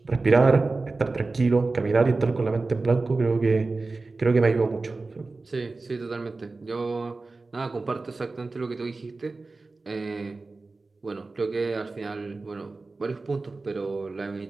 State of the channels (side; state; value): left; quieter; 3.6 dB